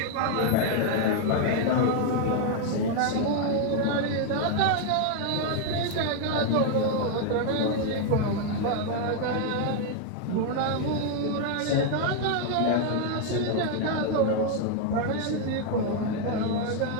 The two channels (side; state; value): both; different; correlation 0.00